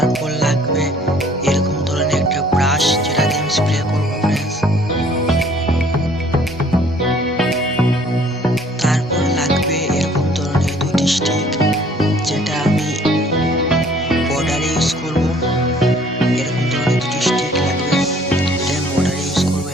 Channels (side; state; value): both; normal; correlation 0.57